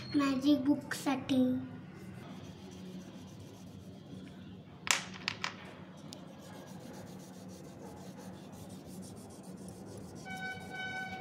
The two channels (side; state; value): both; identical; correlation 1.00